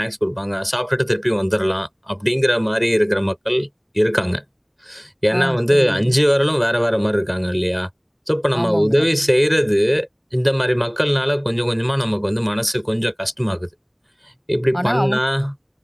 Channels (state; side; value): identical; both; correlation 1.00